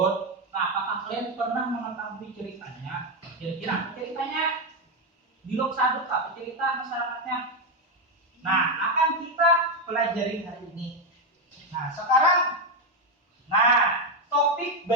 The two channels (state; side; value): normal; both; correlation 0.06